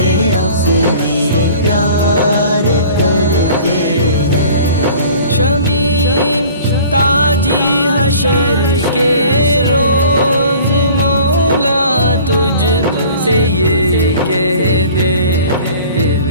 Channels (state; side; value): inverted; both; correlation -0.47